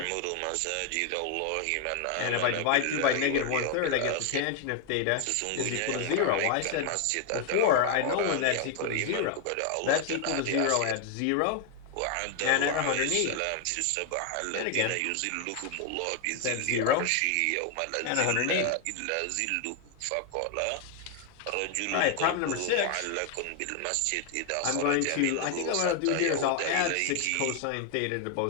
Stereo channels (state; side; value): different; both; correlation 0.01